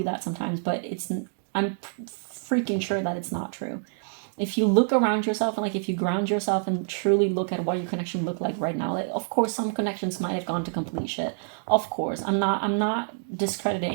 that sometimes, but I'm freaking sure that it's not true. If you look around yourself and like if you ground yourself and truly look at what your connection look like right now, like, of course some connections might have gone to complete shit. Of course, I'm not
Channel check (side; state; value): left; silent; 60 dB below the other